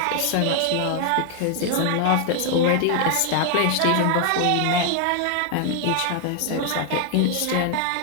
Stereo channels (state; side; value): different; both; correlation 0.00